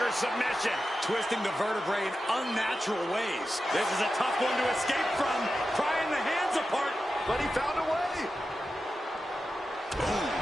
submission. Twisting the vertebrae in unnatural ways. This is a tough one to escape from. Prying the hands apart. But he found a way. Boom.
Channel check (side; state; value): both; normal; correlation 0.91